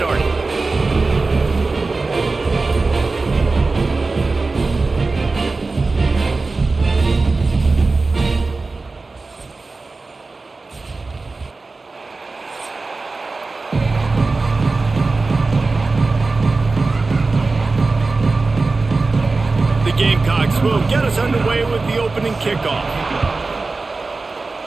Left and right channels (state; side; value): quieter; left; 3.7 dB